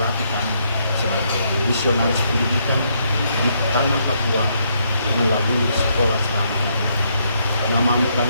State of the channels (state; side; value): inverted; both; correlation -0.74